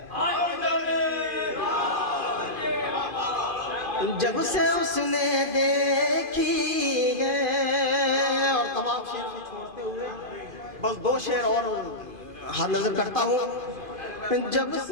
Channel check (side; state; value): left; late; 2.5 ms